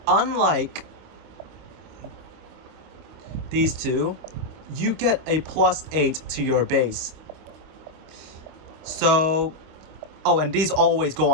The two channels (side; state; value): left; late; 26 ms